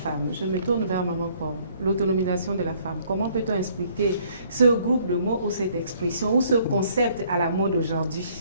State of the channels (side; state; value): both; inverted; correlation -0.62